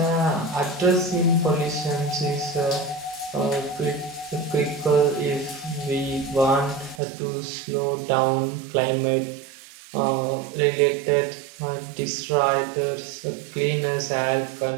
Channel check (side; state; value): left; drops out; at 7.0 s